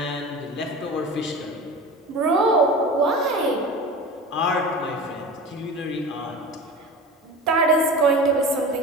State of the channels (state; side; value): normal; both; correlation 0.33